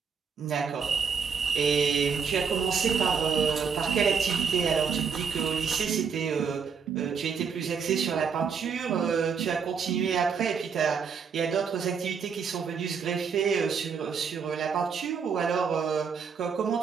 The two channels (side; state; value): left; quieter; 6.2 dB